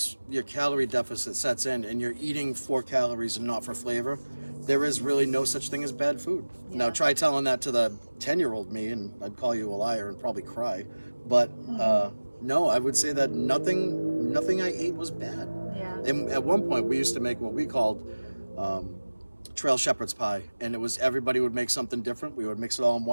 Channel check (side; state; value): both; inverted; correlation -1.00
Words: your calorie deficit sets in and you're eating for calories and not for flavor, there is really no such thing as bad food. Yeah. Now try telling that to the 10-year-old me, and I'd call you a liar and probably cry. But no, I would say that nothing I ate was bad. Yeah. And at one point, we used to make what we called um, trail shepherd's pie, and it was everybody would make something different. We would mix it all in